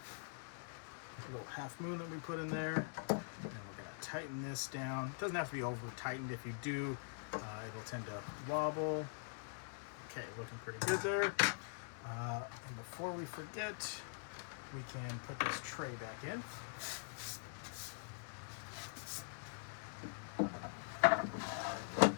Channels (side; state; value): right; silent; digital silence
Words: little half moon that we put in there. And we're going to tighten this down. It doesn't have to be over tightened. If you do, it'll tend to wobble. Okay, looking pretty good there. And before we forget, we can put this tray back in.